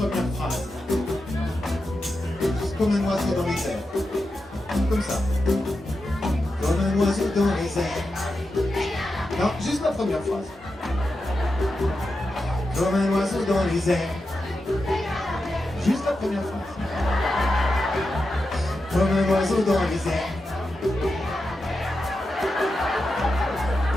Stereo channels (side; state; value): both; normal; correlation 0.89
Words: phrase. comme un oiseau dans les airs. Comme ça. Comme un oiseau dans les airs. Non, juste la première phrase. Comme un oiseau dans les airs. Juste la première phrase. Comme un oiseau dans les airs.